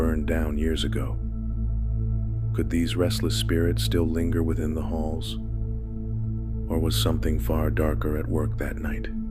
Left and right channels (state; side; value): identical; both; correlation 1.00